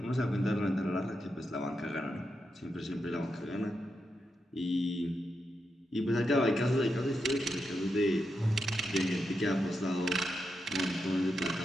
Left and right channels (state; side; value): normal; both; correlation 0.86